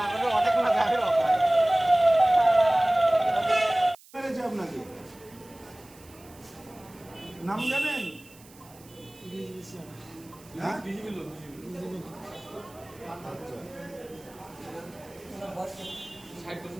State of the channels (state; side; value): noise; right; hiss, 24 dB below the sound